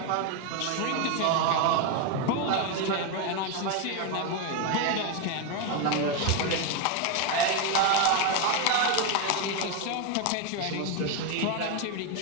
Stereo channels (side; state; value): both; different; correlation 0.02